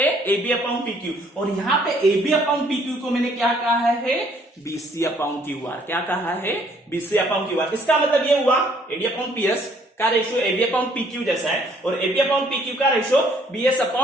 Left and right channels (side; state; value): both; normal; correlation 0.63